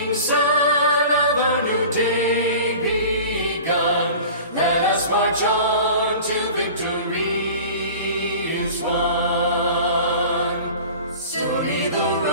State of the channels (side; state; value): both; inverted; correlation -0.40